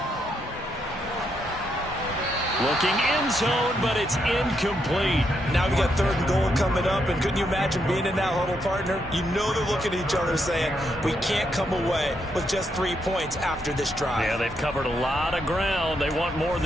Looking end zone, but it's incomplete. Now we got 3rd and goal coming up, and couldn't you imagine being in that huddle, partner? You know they're looking at each other saying, we can't come away with just 3 points after this drive. Yeah, they've covered a lot of ground. They want more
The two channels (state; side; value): normal; both; correlation 0.79